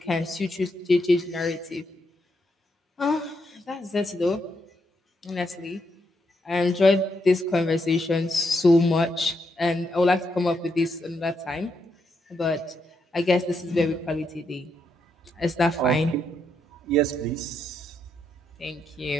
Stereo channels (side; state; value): both; normal; correlation 0.80